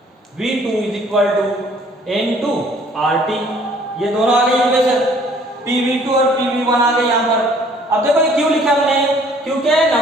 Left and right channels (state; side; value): normal; both; correlation 0.57